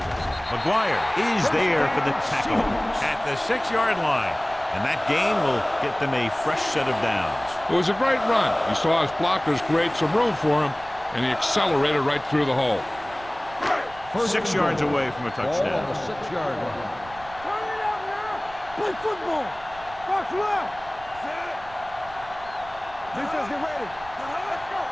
McGuire is there for the tackle at the 6-yard line. And that gain will get them a fresh set of downs. It was a great run. He saw his blockers create some room for him, and he accelerated right through the hole. 6 yards away from a Ball on touchdown. the 6-yard line. Turn it out now. Play football. Box left. Defense, get ready. Let's go.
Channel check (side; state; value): right; noise; rumble, 20 dB below the sound